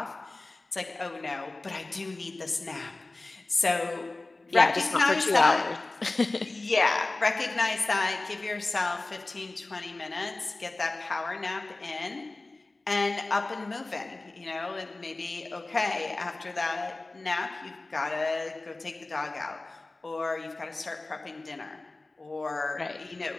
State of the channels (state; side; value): quieter; right; 3.1 dB